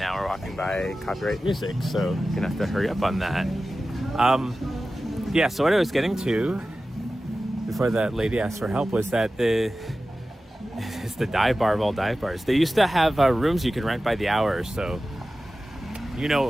we're walking by copyright music, so you're gonna have to hurry up on that. Yeah, so what I was getting to before that lady asked for help was that it's the dive bar of all dive bars. They used to have rooms you could rent by the hour, so you know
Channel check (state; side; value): normal; both; correlation 0.95